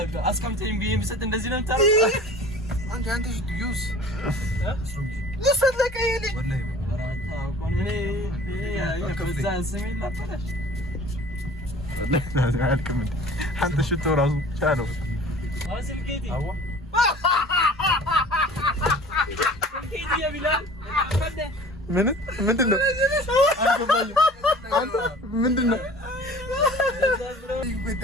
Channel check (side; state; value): both; normal; correlation 0.45